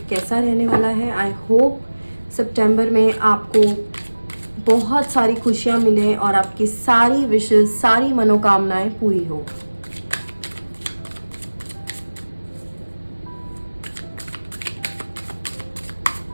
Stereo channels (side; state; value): both; inverted; correlation -1.00